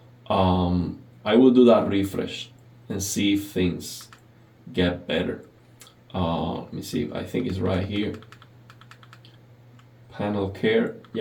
I will do that refresh and see if things get better. Let me see. I think it's right here. Panel care.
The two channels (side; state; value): both; identical; correlation 1.00